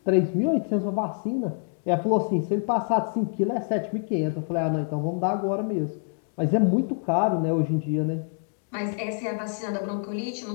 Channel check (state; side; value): silent; right; 61 dB below the other